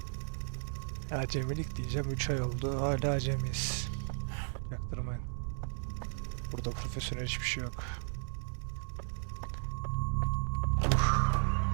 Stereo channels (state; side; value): silent; left; digital silence